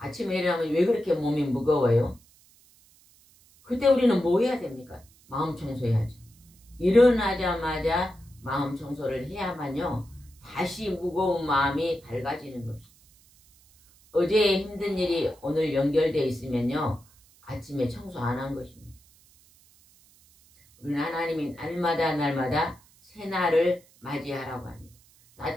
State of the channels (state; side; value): noise; right; hiss, 29 dB below the sound